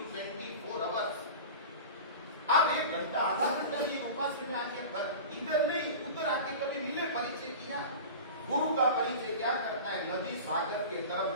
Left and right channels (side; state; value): both; inverted; correlation -0.33